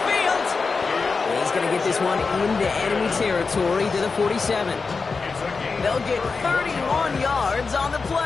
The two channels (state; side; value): quieter; right; 4.6 dB